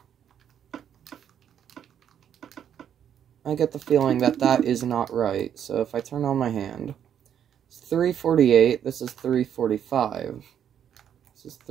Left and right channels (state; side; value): quieter; left; 9.2 dB